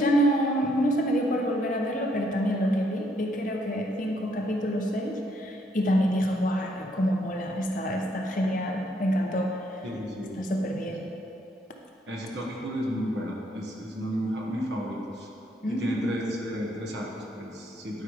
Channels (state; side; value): normal; both; correlation 0.71